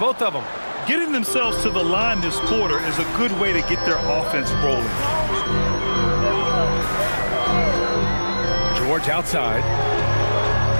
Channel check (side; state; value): both; inverted; correlation -1.00